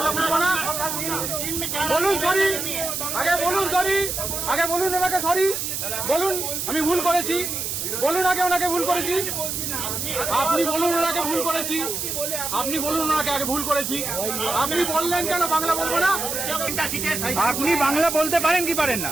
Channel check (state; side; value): noise; right; hiss, 3 dB below the sound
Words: বুঝবো না? বলুন সরি, আগে বলুন সরি, আগে বলুন ওনাকে সরি বলুন, আমি ভুল করেছি বলুন, আগে ওনাকে ভুল করেছি। আপনি বলুন ওনাকে ভুল করেছি, আপনি বলুন ওনাকে আগে ভুল করেছি। আপনি বললেন কেন বাংলা বলবো না? আপনি বাংলা বলতে পারেন কি পারেন না?